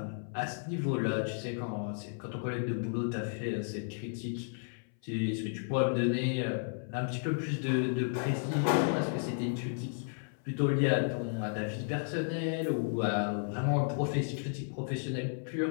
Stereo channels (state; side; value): silent; right; 56 dB below the other